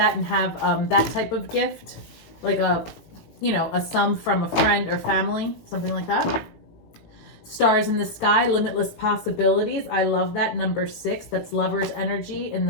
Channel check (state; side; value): late; right; 18 ms